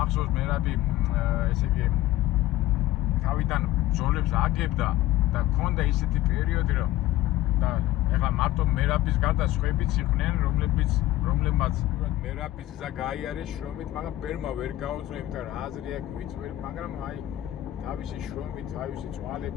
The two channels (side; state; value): right; quieter; 15.2 dB